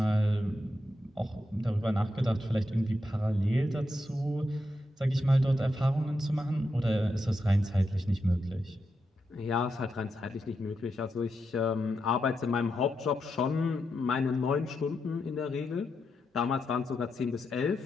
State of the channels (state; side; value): normal; both; correlation 0.85